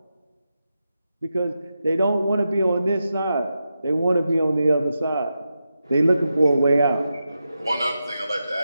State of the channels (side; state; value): both; inverted; correlation -0.89